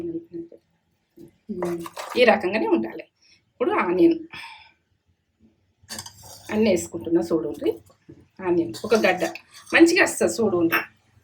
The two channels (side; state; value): both; identical; correlation 1.00